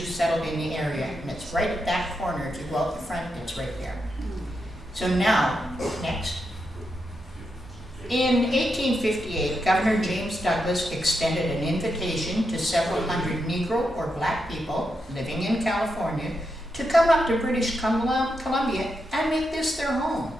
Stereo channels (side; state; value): both; normal; correlation 0.84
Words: settled in the area, and it's right at that corner. If you go out the front, it's right there. So now, next. In 1858, Governor James Douglas extended an invitation to several hundred Negro or Black people living in California to come up to British Columbia and make this their home.